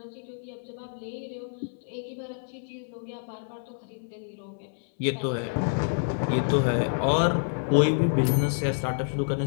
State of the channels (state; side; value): silent; right; 59 dB below the other